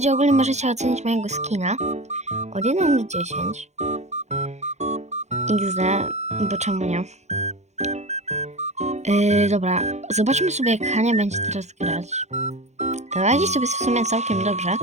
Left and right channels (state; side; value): late; left; 0.33 ms